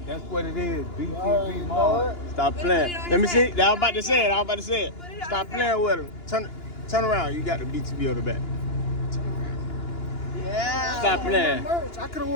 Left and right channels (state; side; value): late; right; 2.9 ms